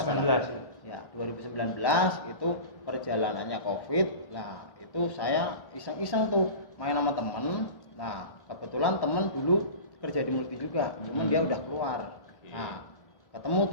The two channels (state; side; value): late; right; 1.4 ms